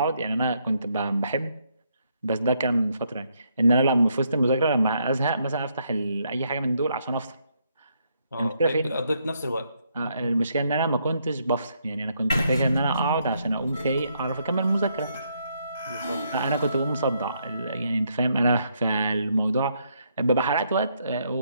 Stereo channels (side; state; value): both; inverted; correlation -0.75